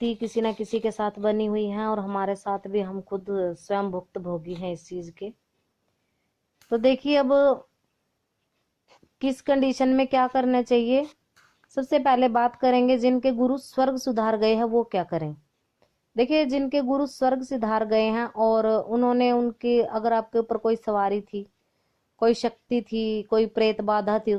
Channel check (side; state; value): both; identical; correlation 1.00